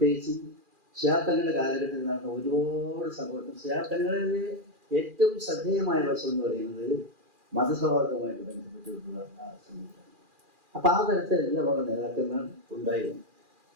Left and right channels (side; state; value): left; late; 2.4 ms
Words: ഷിയാബ്ദങ്ങളുടെ കാലഘട്ടത്തിൽ നടന്ന ഒരുപാട് സംഭവം. ഷിയാബ്ദങ്ങളിലെ ഏറ്റവും ശ്രദ്ധേയമായ വശം എന്ന് പറയുന്നത് മതസൗഹാർദ്ദവുമായിട്ട് ബന്ധപ്പെട്ടിട്ടുള്ള ആ സംവിധാനം. അപ്പം ആ തരത്തിൽ എല്ലാമുള്ള നേതാക്കന്മാർ ഉണ്ടായിരുന്നു.